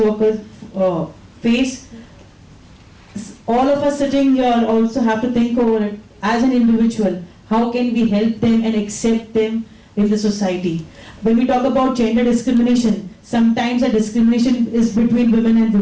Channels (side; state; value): both; identical; correlation 1.00